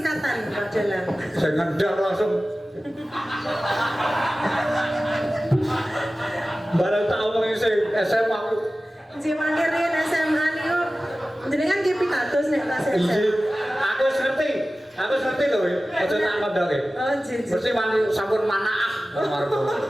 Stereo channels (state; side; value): normal; both; correlation 0.96